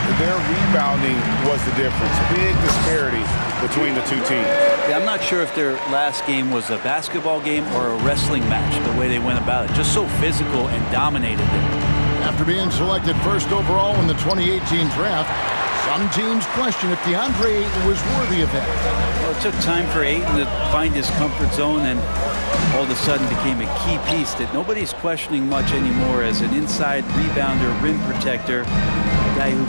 their rebounding was the difference. Big disparity between the two teams. Yeah, I'm not sure if their last game was a basketball game or a wrestling match, the way they went about it. Just so physical and dominated it. After being selected first overall in the 2018 draft, some teams question if DeAndre Ayton was worthy of that. Well, it took time for Ayton to find his comfort zone, and all of a sudden became a key piece that nobody's questioning much anymore as an inside rebounder, rim protector, a guy who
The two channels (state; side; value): inverted; both; correlation -1.00